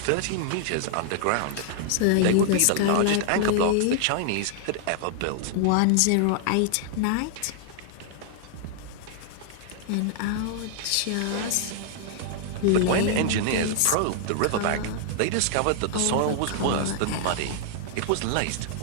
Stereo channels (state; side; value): different; both; correlation -0.01